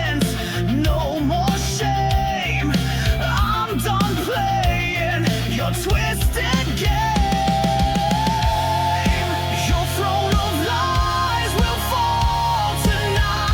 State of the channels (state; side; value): identical; both; correlation 1.00